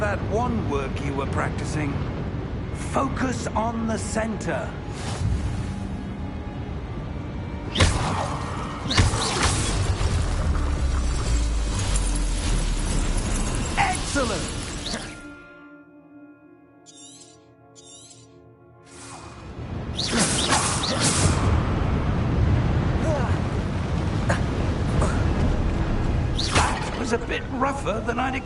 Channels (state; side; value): identical; both; correlation 1.00